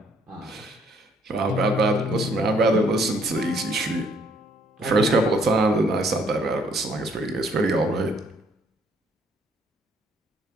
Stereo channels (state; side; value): normal; both; correlation 0.66